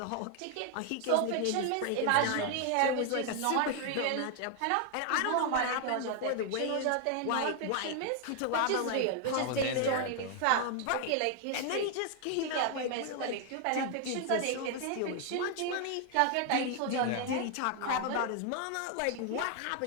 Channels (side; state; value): both; different; correlation 0.00